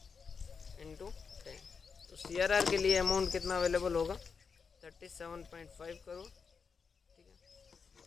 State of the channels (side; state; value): right; quieter; 5.6 dB